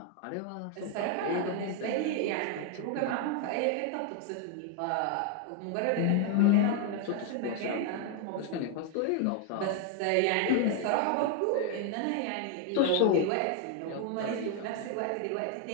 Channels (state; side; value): different; both; correlation 0.01